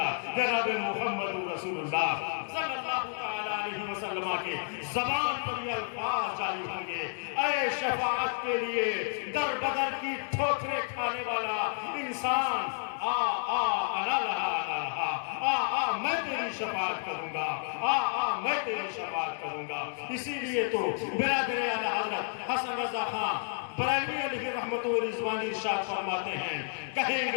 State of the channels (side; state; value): right; silent; 57 dB below the other